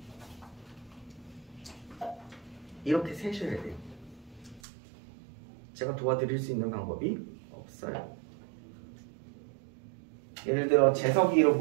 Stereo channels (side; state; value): left; drops out; at 4.6 s